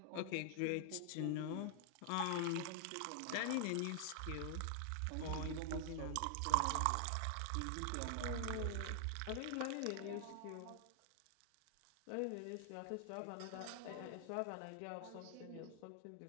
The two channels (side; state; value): both; different; correlation 0.00